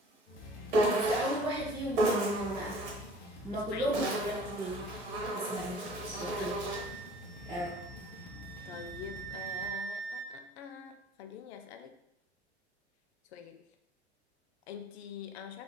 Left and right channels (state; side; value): normal; both; correlation 0.50